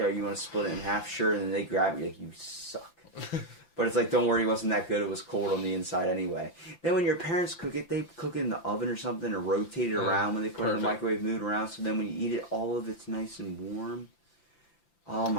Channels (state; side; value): late; right; 5.9 ms